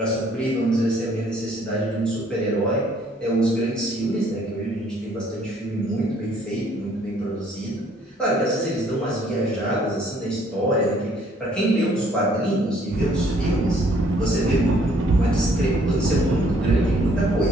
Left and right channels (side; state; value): both; normal; correlation 0.62